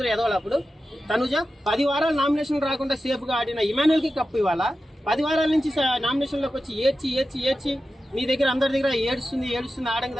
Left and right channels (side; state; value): both; normal; correlation 0.92